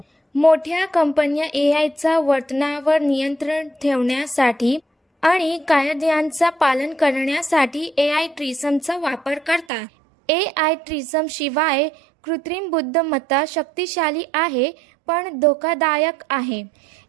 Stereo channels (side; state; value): left; drops out; at 9.7 s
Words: मोठ्या कंपन्या AIच्या वर्तनावर नियंत्रण ठेवण्यासाठी आणि कायद्यांचं पालन करण्यासाठी AI ट्रिसमचा वापर करतात. AI ट्रिसम शिवाय कृत्रिम बुद्धिमत्ता शक्तिशाली आहे पण धोकादायक आहे.